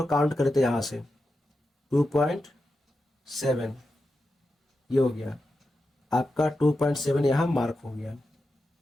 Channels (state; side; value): normal; both; correlation 0.90